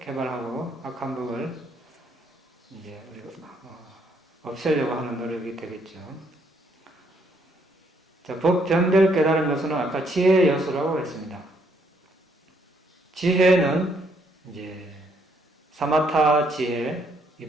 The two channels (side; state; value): both; normal; correlation 0.70